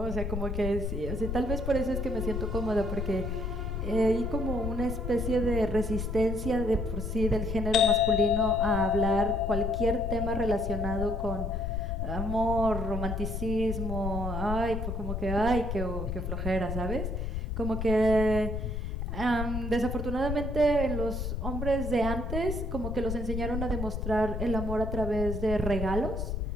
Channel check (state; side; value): noise; left; rumble, 3 dB below the sound